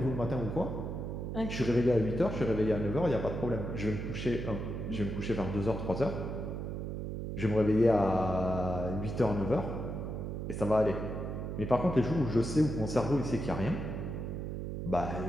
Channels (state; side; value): noise; right; hum, 4 dB below the sound